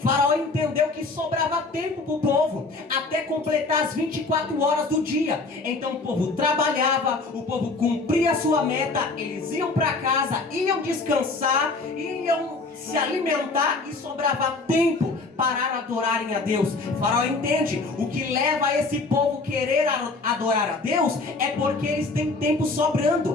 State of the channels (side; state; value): right; quieter; 3.6 dB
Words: entendeu que sobrava tempo para o povo até completar as 24 horas do dia. Então o povo trabalhava, o povo cumpria a sua meta, eles iam para casa, iam descansar, iam se alimentar e sobrava tempo para adorarem a Deus. Faraó entende, o que leva esse povo querer adorar a Deus é porque eles têm tempo sobrando,